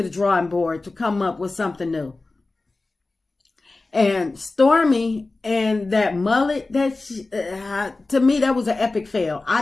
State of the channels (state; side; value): quieter; right; 3.4 dB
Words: the drawing board to come up with something new. And Stormy and that mullet, to me, that was an epic fail.